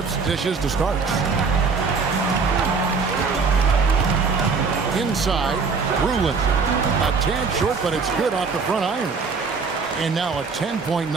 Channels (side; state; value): left; quieter; 4.9 dB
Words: dishes to start. Inside, Brulin. A tad short, but it's good off the front iron. And now a 10-point